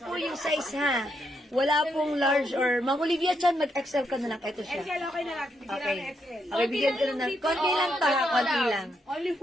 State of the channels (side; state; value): both; normal; correlation 0.79